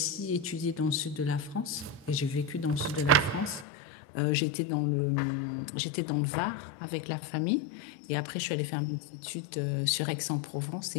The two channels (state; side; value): drops out; right; at 3.7 s